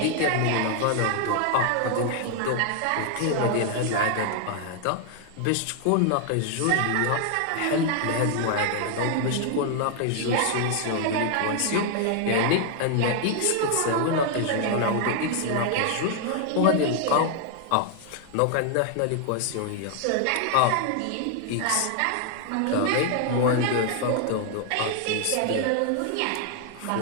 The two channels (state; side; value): different; both; correlation 0.00